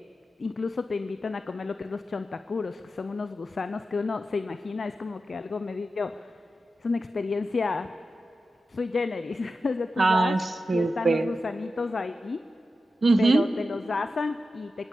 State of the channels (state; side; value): normal; both; correlation 0.91